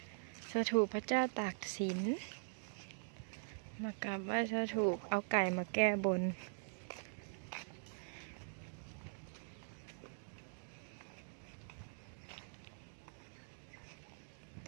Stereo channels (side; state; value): left; silent; digital silence